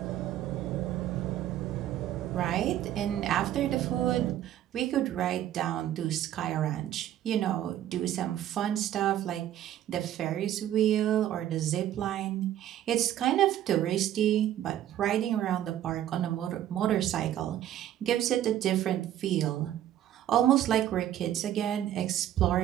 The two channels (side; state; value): left; quieter; 11.9 dB